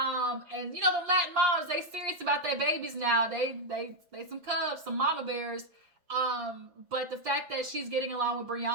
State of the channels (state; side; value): late; left; 6.0 ms